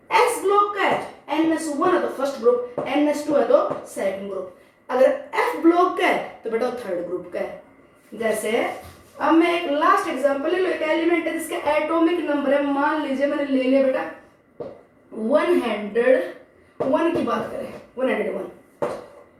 एस ब्लॉक का है, NS1 है तो फर्स्ट ग्रुप, NS2 है तो सेकंड ग्रुप। अगर एफ ब्लॉक का है तो बेटा थर्ड ग्रुप का है। जैसे अब मैं एक लास्ट एग्जांपल ले लो, एक एलिमेंट है जिसका एटॉमिक नंबर है, मान लीजिए मैंने ले लिया बेटा 101 की बात करें, 101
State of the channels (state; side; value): identical; both; correlation 1.00